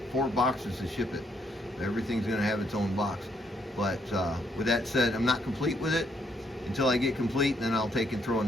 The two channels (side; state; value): both; normal; correlation 0.72